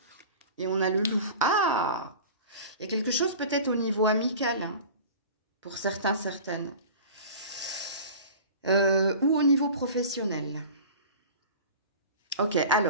et on a le loup. Ah! Il y a quelque chose peut-être au niveau amical, hein, pour certains, certaines. Ou au niveau professionnel. Ok,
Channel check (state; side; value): inverted; both; correlation -0.38